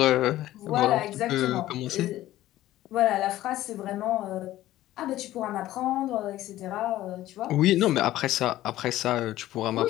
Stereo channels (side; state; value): right; quieter; 14.8 dB